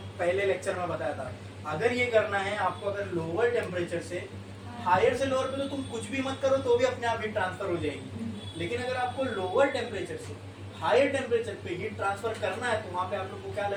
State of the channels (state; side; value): identical; both; correlation 1.00